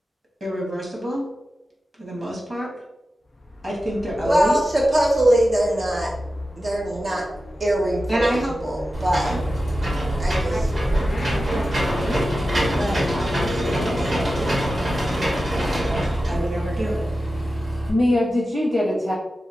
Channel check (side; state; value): both; normal; correlation 0.93